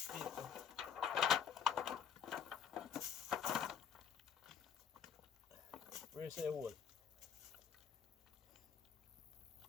paper. Where is the hole?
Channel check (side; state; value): right; quieter; 7.8 dB